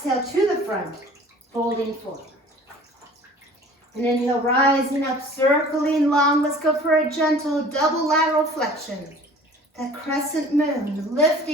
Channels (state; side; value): normal; both; correlation 0.47